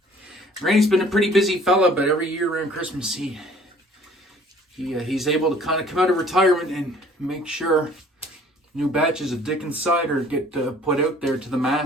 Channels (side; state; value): both; normal; correlation 0.54